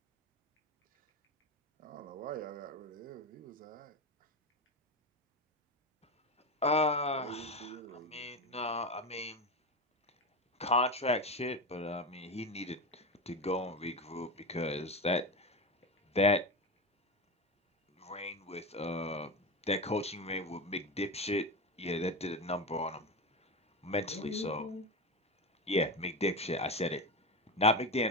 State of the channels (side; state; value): both; normal; correlation 0.18